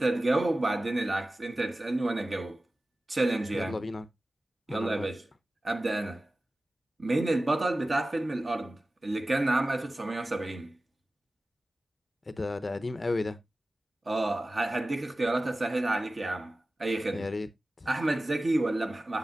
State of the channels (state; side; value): normal; both; correlation 0.96